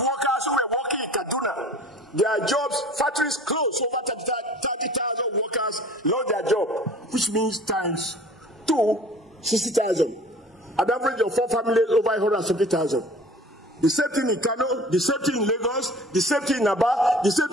workers who were working in Kaduna, their jobs, factories closed, over 30,000 workers lost their job, which means times 60,000. An average of 4 families over 170,000. The same thing in Kano, the same thing in Lagos, the same thing in Aba, the same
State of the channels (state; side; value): normal; both; correlation 0.46